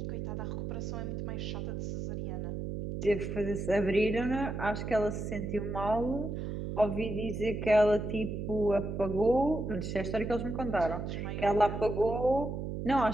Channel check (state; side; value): noise; right; hum, 4 dB below the sound